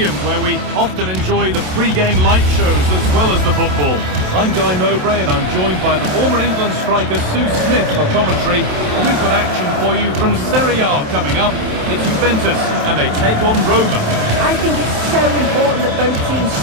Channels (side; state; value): left; late; 27 ms